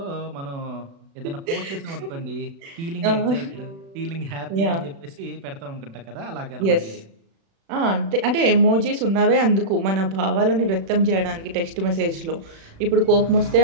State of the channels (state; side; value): late; left; 36 ms